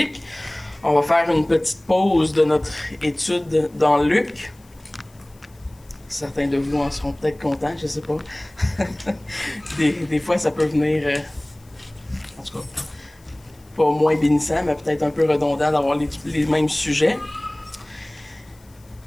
on va faire une petite pause de notre étude dans Luc. Certains de vous en seront peut-être contents, je ne sais pas. des fois, ça peut venir, en tout cas, pas moins bénissant, mais peut-être un peu redondant d'avoir les mêmes sujets.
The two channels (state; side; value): noise; left; hiss, 30 dB below the sound